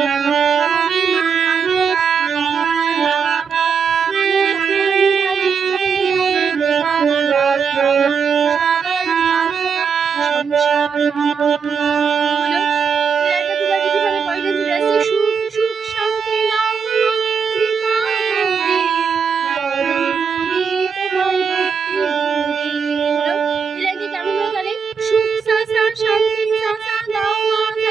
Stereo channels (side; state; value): left; quieter; 6.2 dB